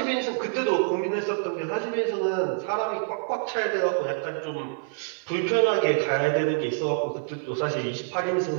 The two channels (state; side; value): silent; left; digital silence